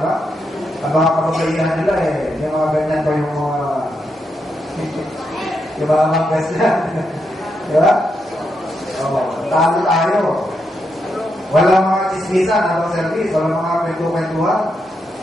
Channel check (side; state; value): both; normal; correlation 0.82